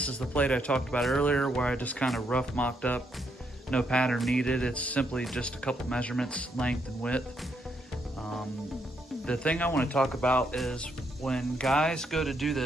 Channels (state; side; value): normal; both; correlation 0.76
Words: is the plate I talked about earlier where I just kind of rough mocked up, no pattern needed. It's simply just a couple measurements, length and width. The thing I want to talk about is when guys go to do